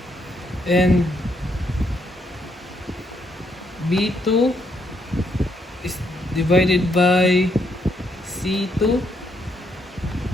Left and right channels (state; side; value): normal; both; correlation 0.75